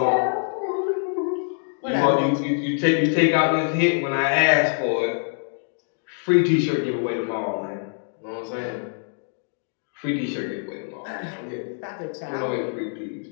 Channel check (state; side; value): silent; right; 56 dB below the other